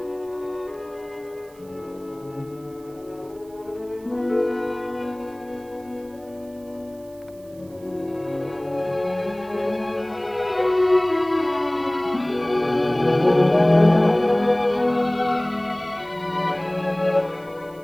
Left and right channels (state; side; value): noise; right; hiss, 28 dB below the sound